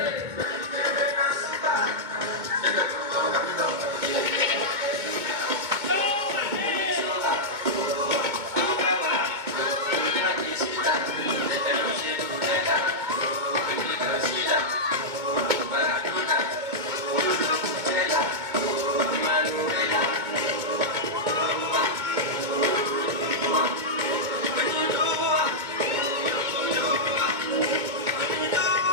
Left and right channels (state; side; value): late; left; 2.2 ms